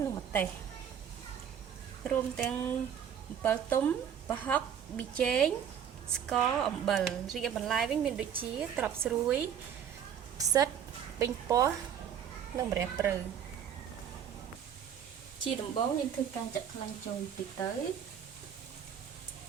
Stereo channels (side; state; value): left; quieter; 8.6 dB